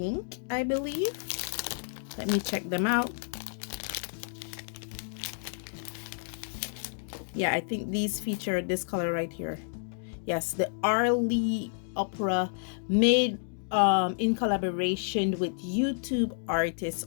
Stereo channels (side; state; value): right; silent; digital silence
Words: I believe. Let me check them out. Yeah, I think these feature this color right here. Yes, the Arlene Opera, made in collaboration with YouTube artist